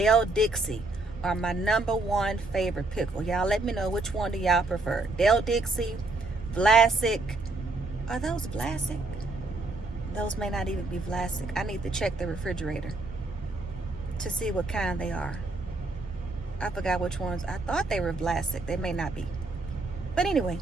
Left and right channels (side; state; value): left; quieter; 3.1 dB